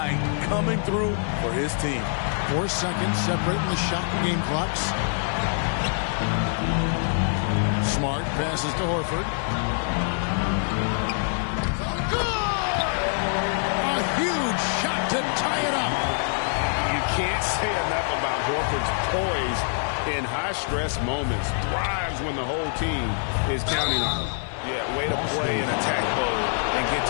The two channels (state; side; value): silent; right; 62 dB below the other